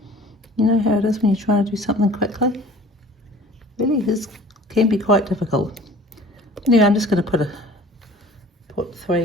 You know how it is when you're trying to do something quickly? Really, this can be quite difficult. Anyway, I'm just going to put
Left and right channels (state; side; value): normal; both; correlation 0.47